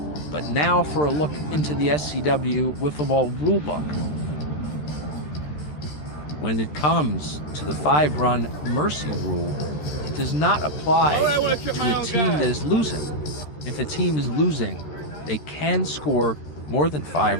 but now for a look into the SCW wiffle ball rulebook. When it comes to the 5-run mercy rule, it does not apply to a team that is losing. If a team is losing, they can score more than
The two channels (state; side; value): late; right; 13 ms